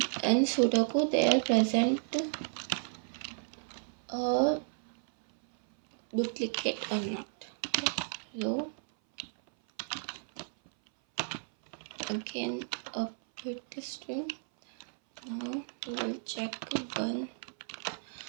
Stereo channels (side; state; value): left; silent; 56 dB below the other